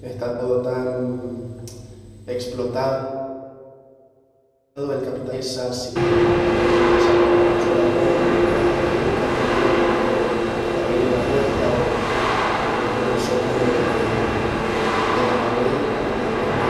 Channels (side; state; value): both; identical; correlation 1.00